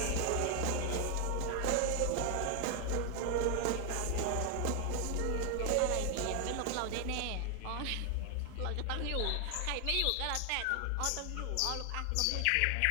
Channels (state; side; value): different; both; correlation 0.00